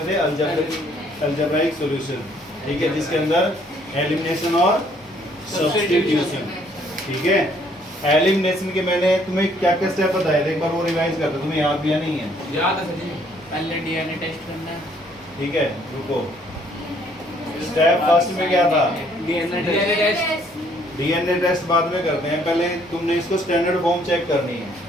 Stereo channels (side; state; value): both; normal; correlation 0.64